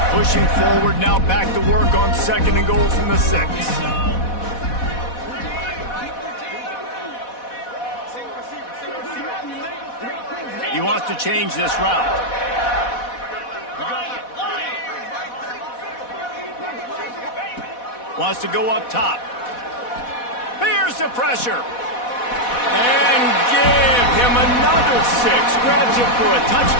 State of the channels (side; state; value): right; late; 4.1 ms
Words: pushing forward, now back to work on 2nd and goal from the 6. He wants to change this route. Wants to go up top. Here's the pressure. And give him another 6. Grabs it for a